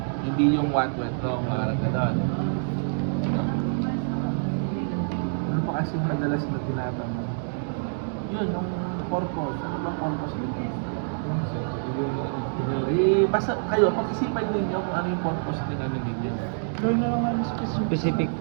Hindi yung what went wrong, mga gano'n. pa kasi madalas na tinatanong? Yun, yung purpose. Ano ba purpose nito? Basta kayo, pag-isipan ninyo kung ano yung purpose din ano ninyo. Gawin na lang namin specific. Specific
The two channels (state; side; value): silent; left; digital silence